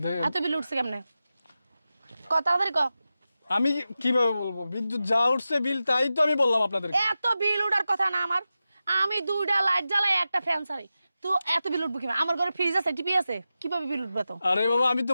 দে- এত বিল উঠছে কেমনে? ক তাড়াতাড়ি ক। আমি কিভাবে বলবো? বিদ্যুৎ যা উঠছে বিল, তাই তো আমি বললাম আপনাদের। এত বিল উঠার কথা না আমার, আমি 2টা লাইট জ্বালাই একটা ফ্যান চালাই, তো এত বিল উঠবো কিভাবে? আমার ঘরে ফ্রিজ আছে, টিভি আছে, কিভাবে বিল উঠবে? তো আরে বাবা, আমি তো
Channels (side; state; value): both; inverted; correlation -0.92